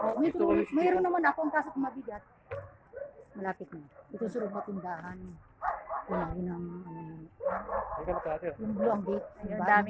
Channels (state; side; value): identical; both; correlation 1.00